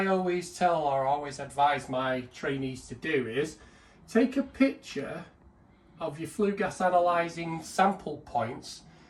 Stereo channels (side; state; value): both; identical; correlation 1.00